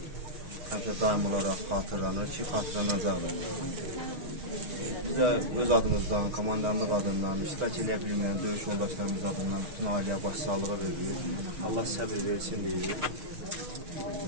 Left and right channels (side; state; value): left; late; 6.4 ms